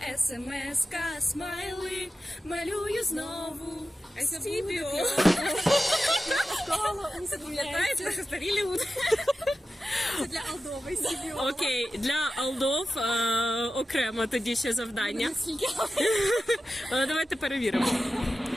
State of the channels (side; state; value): both; normal; correlation 0.93